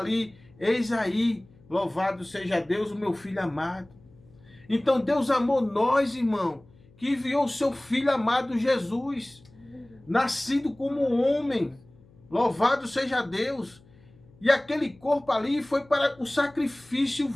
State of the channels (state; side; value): noise; left; hum, 27 dB below the sound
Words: eis aí, louvado seja Deus, o meu filho amado. Então Deus amou nós, irmão, que enviou o seu filho amado Jesus, nascido como homem. Louvado seja Deus. E aquele corpo ali foi para o sacrifício